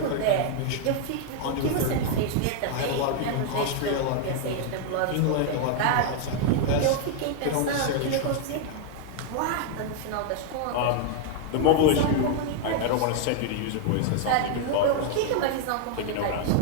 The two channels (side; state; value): both; different; correlation 0.00